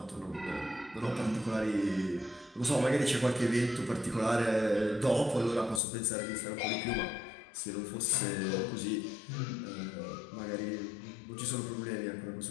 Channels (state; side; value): drops out; right; at 5.8 s